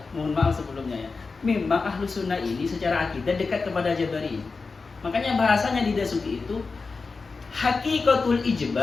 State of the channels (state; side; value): quieter; right; 4.3 dB